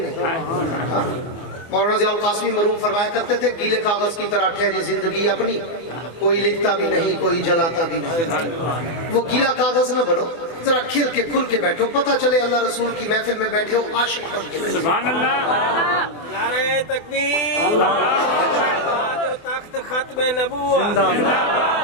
مولانا ضیاء القاسمی مرحوم فرمایا کرتے تھے گیلے کاغذ کی طرح ٹھہری زندگی اپنی، کوئی لکھتا بھی نہیں، کوئی جلاتا بھی نہیں۔ وہ گیلا کاغذ نہ بنو، ذرا کھل کے کھل کے بیٹھو، پتہ چلے اللہ رسول کی محفل میں بیٹھے ہو عاشق بن کے بیٹھے۔ سبحان اللہ نعرہ تکبیر، جو تخت ختم نبوت،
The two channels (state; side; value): late; right; 24 ms